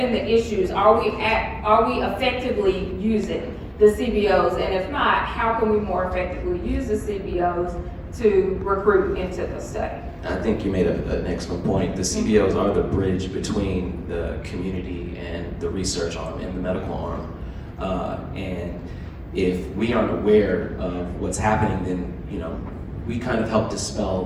the issues? Are we effectively using the CBOs? And if not, how can we more effectively use the CBOs to recruit into the study? I think you made an excellent point. The CBOs are the bridge between the community and the research arm and the medical arm. And if we aren't aware of what's happening, then we kind of help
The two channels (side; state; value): both; identical; correlation 1.00